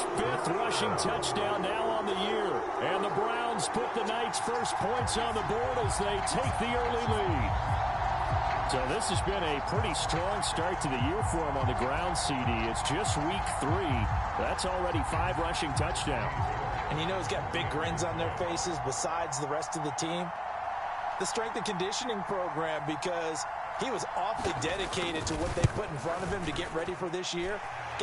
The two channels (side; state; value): both; identical; correlation 1.00